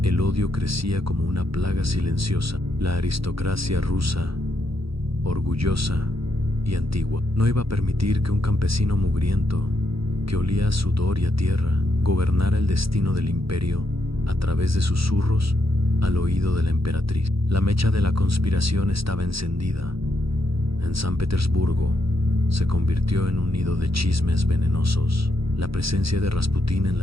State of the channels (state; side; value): late; left; 0.76 ms